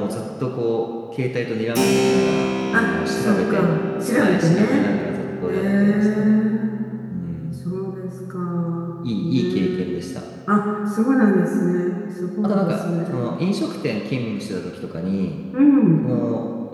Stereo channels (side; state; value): both; identical; correlation 1.00